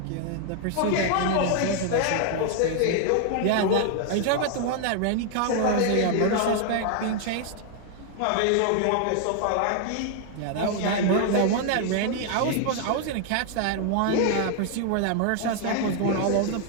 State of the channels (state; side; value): different; both; correlation 0.00